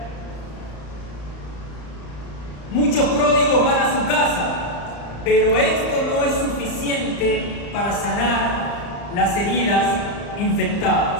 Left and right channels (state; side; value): late; right; 35 ms